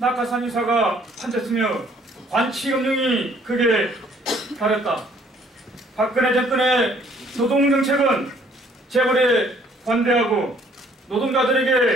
판쳤으며 관치금융이 극에 달했다. 박근혜 정권의 노동정책은 재벌에 관대하고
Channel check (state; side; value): normal; both; correlation 0.61